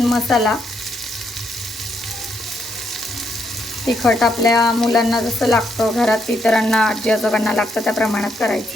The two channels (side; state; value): both; normal; correlation 0.76